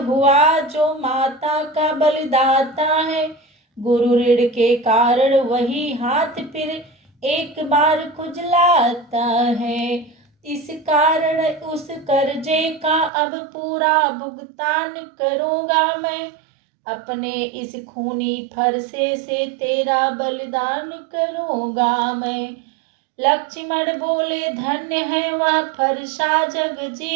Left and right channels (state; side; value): drops out; left; at 13.1 s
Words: हुआ, जो माता का बलिदाता है, गुरु ऋण के कारण वही हाथ फिर एक बार खुजलाता है। इस कारण उस कर्जे का अब पूरा भुगतान करूँगा मैं, अपने इस खूनी फरसे से तेरा बलिदान करूँगा मैं। लक्ष्मण बोले धन्य है वह फरसा